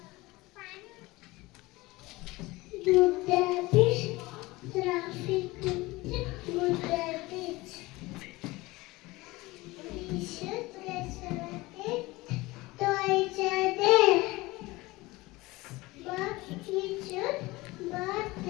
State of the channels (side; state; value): right; quieter; 21.0 dB